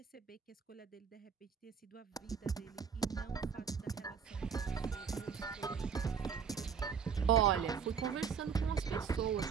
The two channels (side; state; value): left; quieter; 6.7 dB